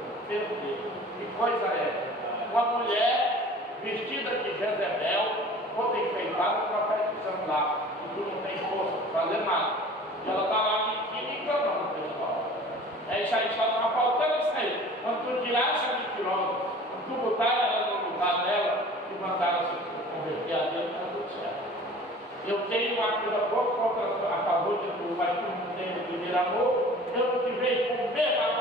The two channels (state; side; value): normal; both; correlation 0.45